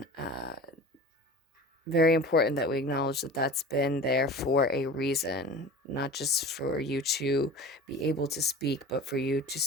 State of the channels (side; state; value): both; normal; correlation 0.37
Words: very important that we acknowledge that that's been there for a reason, not just for you to be able to speak, but for you to